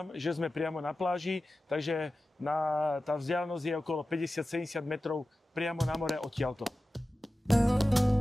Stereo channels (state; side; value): normal; both; correlation 0.95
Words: že sme priamo na pláži, takže tá vzdialenosť je okolo 50-70 metrov priamo na more odtiaľto.